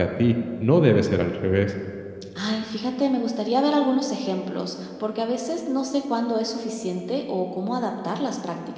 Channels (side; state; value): both; identical; correlation 1.00